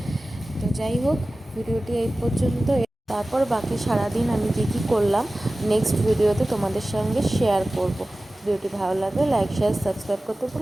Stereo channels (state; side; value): normal; both; correlation 0.96